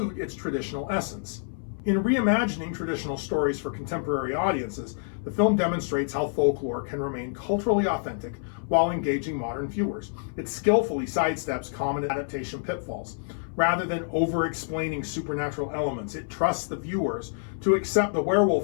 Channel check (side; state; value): right; silent; 59 dB below the other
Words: its traditional essence. In reimagining traditional stories for contemporary audiences, the film demonstrates how folklore can remain culturally authentic while engaging modern viewers. It skillfully sidesteps common adaptation pitfalls. Rather than over-explaining supernatural elements, it trusts the viewers to accept the